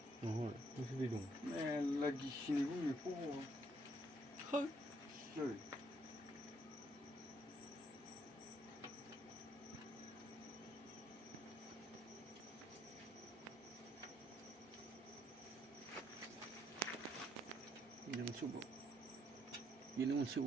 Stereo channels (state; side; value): normal; both; correlation 0.71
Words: बेसे दै दं मेरला गिसिनिबो बेखौ Ini